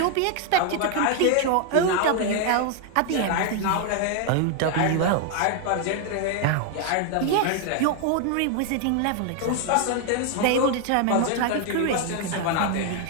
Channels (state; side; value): different; both; correlation 0.01